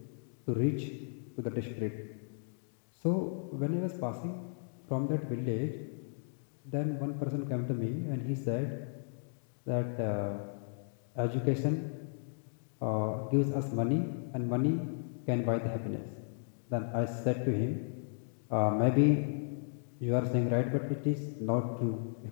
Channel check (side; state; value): right; silent; digital silence